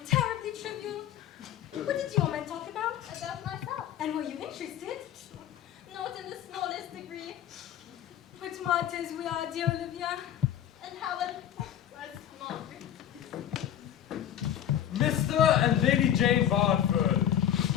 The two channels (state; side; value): quieter; right; 10.5 dB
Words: Terribly trivial. What did your man talk about? About myself. And were you interested? Not in the smallest degree. But martyrs we are, dear Olivia. And how was Margaret? Mr. and Lady Jane Barnford.